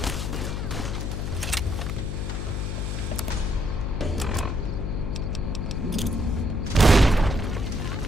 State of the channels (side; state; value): left; noise; hum, 2 dB below the sound